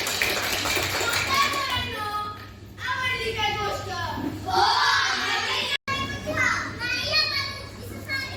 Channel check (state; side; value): identical; both; correlation 1.00